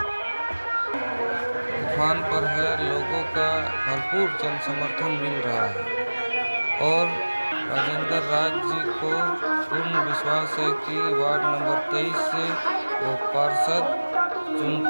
तूफान पर है, लोगों का भरपूर जन समर्थन मिल रहा है और राजेंद्र राज जी को पूर्ण विश्वास है कि वार्ड नंबर 23 से वो पार्षद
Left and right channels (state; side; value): inverted; both; correlation -1.00